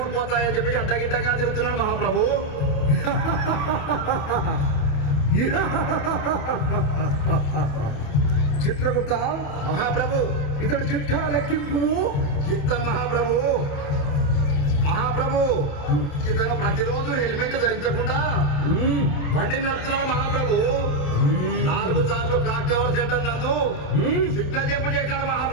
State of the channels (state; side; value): late; right; 28 ms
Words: చెప్పి అడ్డగిడ్డగా తిరుగుతున్నాడు మహాప్రభు. చిత్రగుప్త మహాప్రభు ఇతడు చిట్టా లెక్కింపు. చిత్తం మహాప్రభు. మహాప్రభు ఇతను ప్రతిరోజు హెల్మెట్ ధరించకుండా బండి నడుపుతున్నాడు మహాప్రభు. 4 సార్లు క్లాక్ టవర్ సెంటర్ నందు సిగ్నల్ చెప్పు చేశాడు